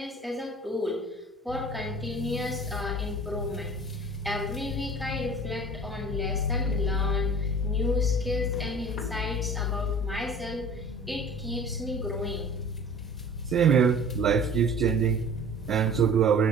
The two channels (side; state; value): both; normal; correlation 0.44